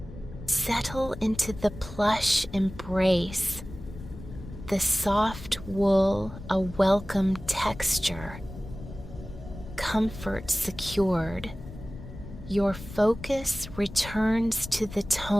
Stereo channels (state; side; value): noise; left; rumble, 13 dB below the sound